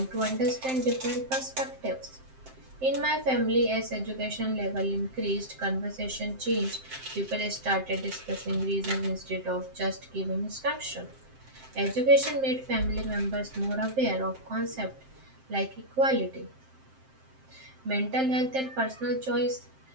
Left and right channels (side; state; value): left; late; 7.6 ms